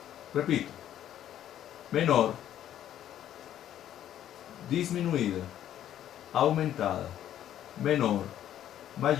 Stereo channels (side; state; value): right; quieter; 11.3 dB